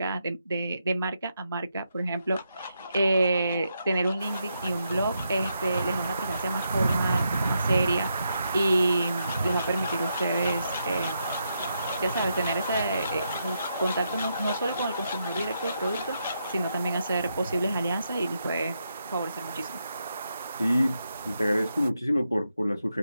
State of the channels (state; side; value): inverted; both; correlation -0.82